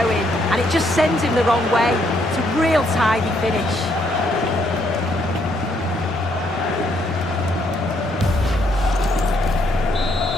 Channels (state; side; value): normal; both; correlation 0.72